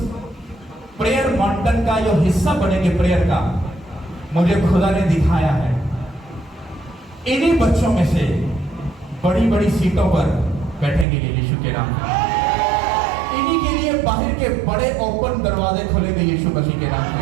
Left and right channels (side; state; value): left; drops out; at 11.1 s